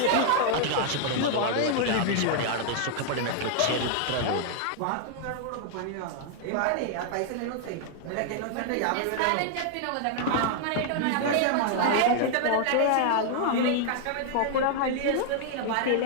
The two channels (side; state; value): both; different; correlation 0.00